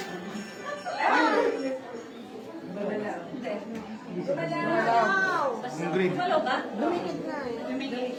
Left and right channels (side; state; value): both; identical; correlation 1.00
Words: Yung green. Malo ba? Dumikit na eh.